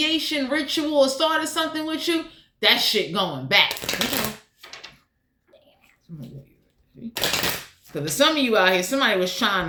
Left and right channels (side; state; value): both; identical; correlation 1.00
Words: ritual or started something with you, that shit going back. Because for some of you out here, somebody was